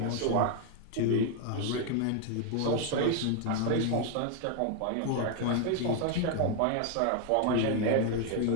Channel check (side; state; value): both; different; correlation 0.00